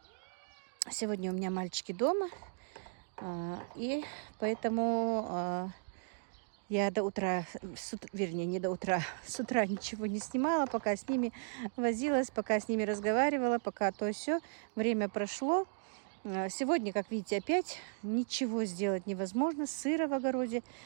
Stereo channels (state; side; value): silent; left; digital silence